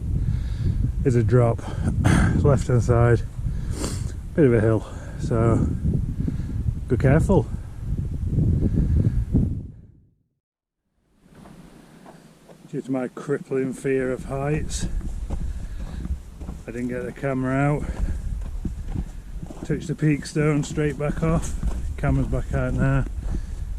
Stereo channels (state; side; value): identical; both; correlation 1.00